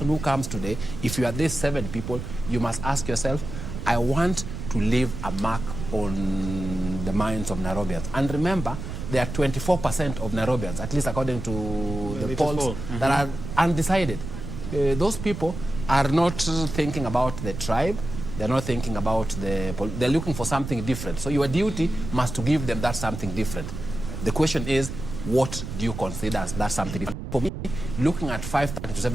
who comes today, if you are these 7 people, you must ask yourself, I want to leave a mark on the minds of Nairobians. And remember, there are 24% of Nairobians, at least according to the polls, that are undecided. Those people are not thinking about the tribe. They're not thinking about they're looking for something different. So your duty must to give them that something different. The question is, what do you consider as that something different? For me, looking at 530 to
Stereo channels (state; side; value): noise; right; rumble, 8 dB below the sound